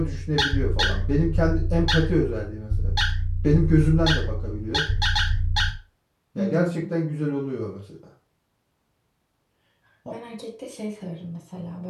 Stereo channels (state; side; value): identical; both; correlation 1.00